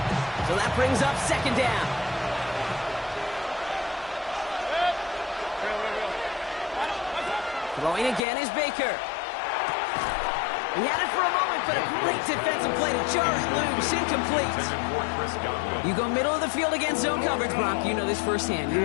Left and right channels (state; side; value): drops out; right; at 8.2 s